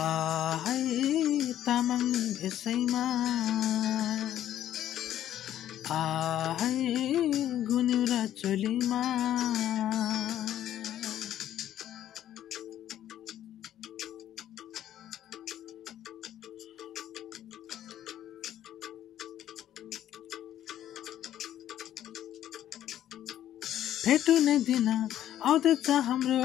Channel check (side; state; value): right; quieter; 11.7 dB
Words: आहै तामाङ भेषैमा आहै गुनिउरा चोलीमा भेटुने दिन आउँदैछ